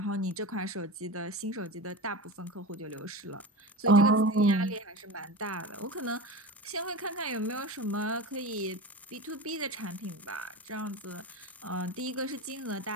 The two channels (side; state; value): both; normal; correlation 0.28